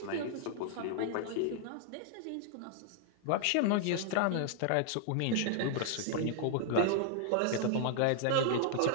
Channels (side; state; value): both; different; correlation -0.01